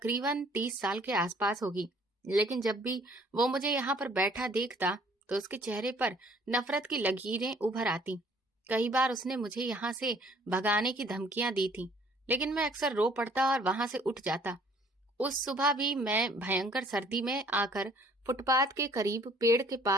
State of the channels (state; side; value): normal; both; correlation 0.58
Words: 30 साल के आसपास होगी, लेकिन जब भी वो मुझे यहाँ पर बैठा देखता तो उसके चेहरे पर नफरत की लकीरें उभर आती। कई बार उसने मुझे यहाँ से भगाने की धमकियां दी थी, लेकिन मैं अक्सर रो पड़ता और वहां से उठ जाता। उस सुबह भी मैं भयंकर सर्दी में आकर फुटपाथ के करीब पेड़ के